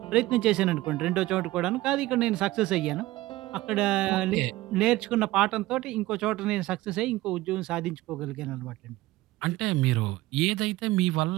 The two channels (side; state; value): left; quieter; 17.9 dB